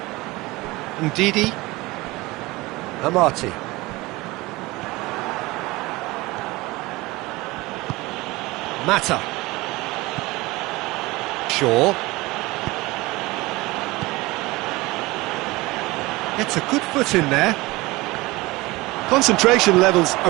Ndidi. Amati. Mata. Shaw. Gets a good foot in there. Concentration levels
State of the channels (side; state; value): left; quieter; 21.4 dB